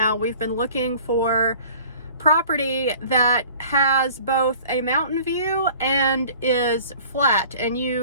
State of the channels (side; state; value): both; inverted; correlation -0.48